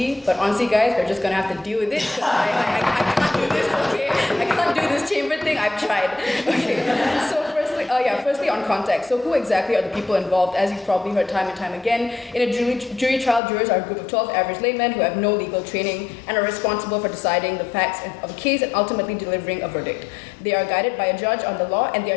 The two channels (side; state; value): right; drops out; at 13.4 s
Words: but honestly, guys, we're just gonna have to deal with it. I can't do this, okay? I can't do this chamber thing. I've tried. Okay. So firstly on context. So who exactly are the people involved? As you've probably heard time and time again, in a jury trial, jurors are a group of 12 average laymen who have no legal training and are responsible for deciding the facts of a case and ultimately delivering a verdict. They are guided by a judge on the law, and they